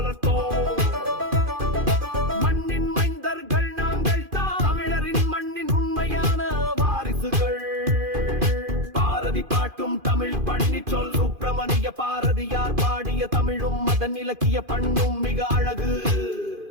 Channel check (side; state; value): left; late; 2.5 ms